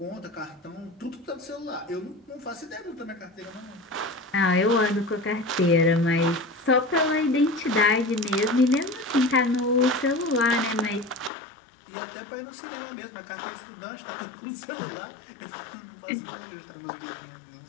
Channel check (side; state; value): right; drops out; at 11.3 s